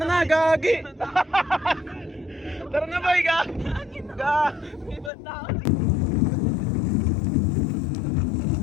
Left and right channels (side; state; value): right; drops out; at 5.1 s